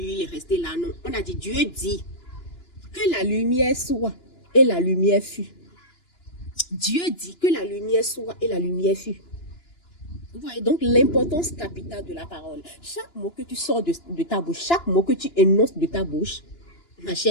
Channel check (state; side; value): late; right; 2.9 ms